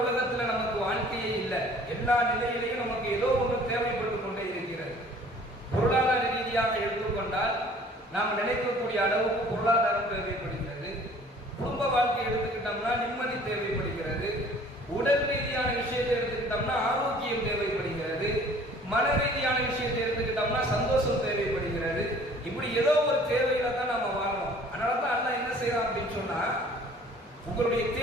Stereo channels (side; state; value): both; normal; correlation 0.52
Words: உலகத்தில் நமக்கு வாழ்க்கையே இல்லை. எல்லா நிலையிலையும் நமக்கு ஏதோ ஒன்று தேவைப்பட்டு கொண்டே இருக்கிறது. பொருளாதார ரீதியாக எடுத்துக்கொண்டால் நாம் நினைக்கக்கூடிய அளவுக்கு பொருளாதாரம் தேவைப்படுகிறது. குடும்ப வாழ்க்கை எடுத்துக்கிட்டோம்னா நிம்மதி தேவைப்படுகிறது. உடல் ரீதியான விஷயத்தை எடுத்துக்கிட்டோம்னா ஆரோக்கியம் தேவைப்படுகிறது. மன ரீதியான விஷயத்தை எடுத்துக்கிட்டோம்னா சந்தோஷம் தேவைப்படுகிறது. இப்படி ஏதோ ஒரு தேவையில தான் நாம வாழணும். அதனால தான் அல்லாஹ் என்ன செய்யறான் அப்படின்னு சொன்னா, உங்களுடைய